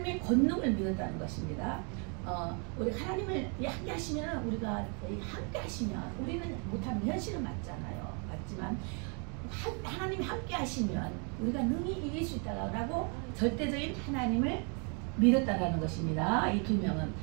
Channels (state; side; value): quieter; left; 37.1 dB